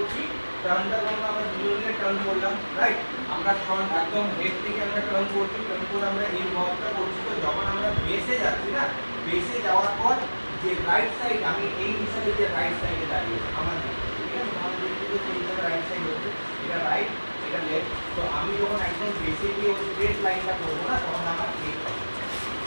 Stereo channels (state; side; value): inverted; both; correlation -1.00